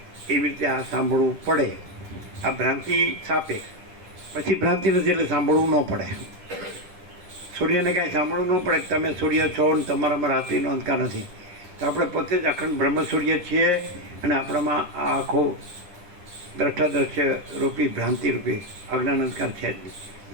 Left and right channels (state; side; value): late; left; 10 ms